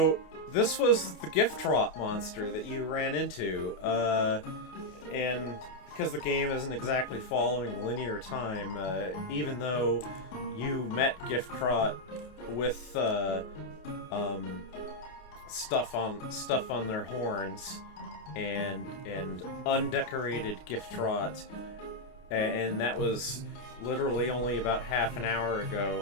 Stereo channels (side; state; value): right; late; 28 ms